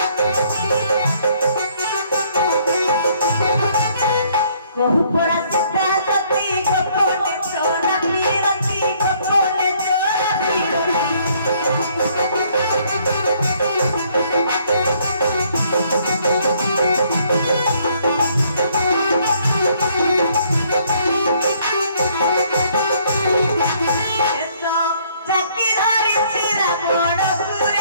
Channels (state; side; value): inverted; both; correlation -0.65